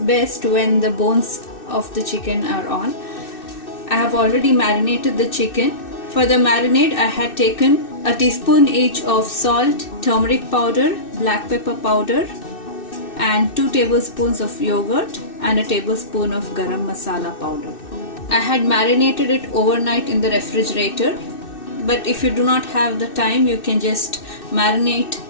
when the bones of the chicken are on. I have already marinated the chicken. For the marinade I had taken a teaspoon each of salt, turmeric powder, black pepper powder and 2 tablespoons of yogurt and a tablespoon of garam masala powder. I had marinated it overnight in the refrigerator, but if you do not have the time, you can just marinate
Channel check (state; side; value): late; right; 2.6 ms